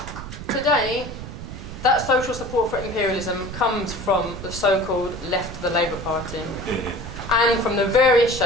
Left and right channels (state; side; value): noise; right; rumble, 11 dB below the sound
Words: Today, that social support for imperialism comes from the so-called left of the Labour Party and from the various